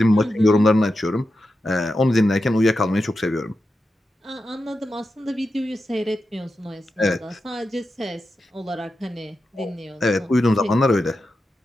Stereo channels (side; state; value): both; normal; correlation 0.90